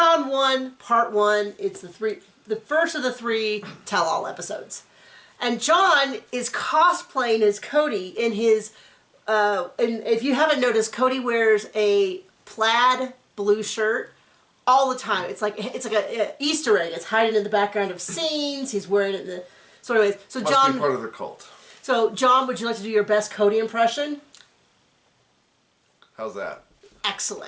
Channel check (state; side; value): identical; both; correlation 1.00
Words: Part 1. It's the first of the 3 tell-all episodes. And John is cosplaying as Cody in his, and if you haven't noticed, Cody wears a plaid blue shirt all the time. It's like an Easter egg. It's hiding in the background of scenes. He's wearing it in the... So anyways, so Must John... be part of the cult. So, John, would you like to do your best Cody impression? How's that?